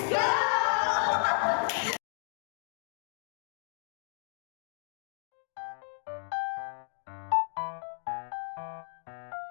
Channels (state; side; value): silent; right; 55 dB below the other